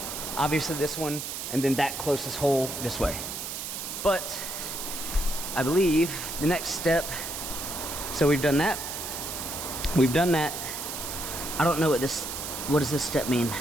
obviously this one, and then that closest hole this way. But I believe the next step, so we've done that. We've done that. I don't know what does this step mean?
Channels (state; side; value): noise; right; hiss, 6 dB below the sound